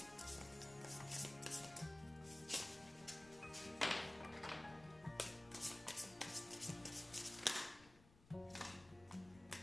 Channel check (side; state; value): left; noise; rumble, 22 dB below the sound